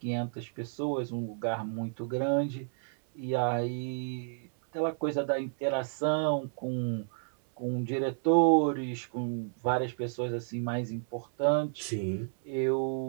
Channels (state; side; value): silent; left; 57 dB below the other